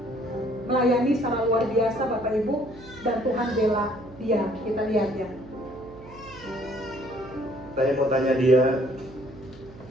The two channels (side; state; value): right; noise; hum, 19 dB below the sound